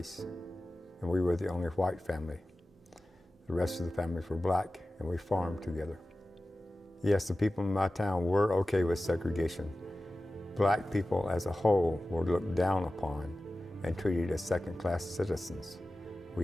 and we were the only white family. The rest of the families were black, and we farmed together. Yes, the people in my town were okay with segregation. Black people as a whole were looked down upon and treated as second-class citizens.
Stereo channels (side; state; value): both; normal; correlation 0.95